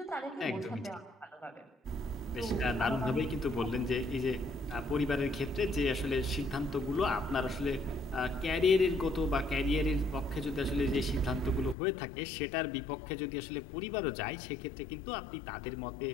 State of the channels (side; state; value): right; drops out; at 11.8 s